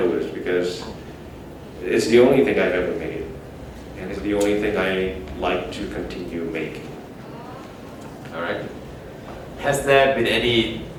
because it's the only thing I've ever made, and it's the only thing I like to continue making. All right. Has there been any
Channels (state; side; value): identical; both; correlation 1.00